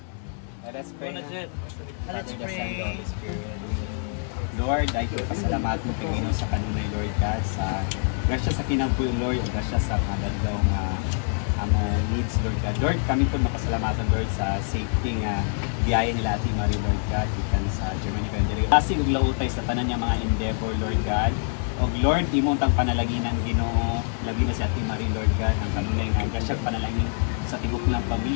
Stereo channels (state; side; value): silent; right; 61 dB below the other